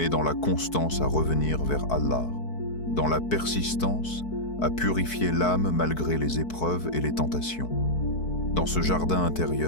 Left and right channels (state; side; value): late; right; 4.6 ms